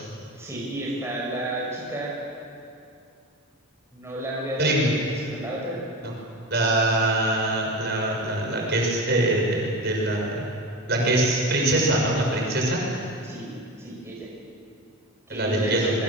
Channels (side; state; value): both; normal; correlation 0.27